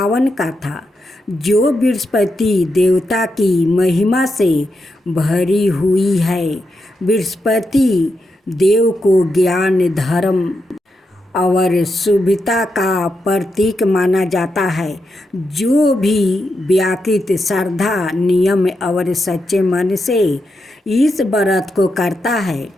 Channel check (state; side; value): normal; both; correlation 0.85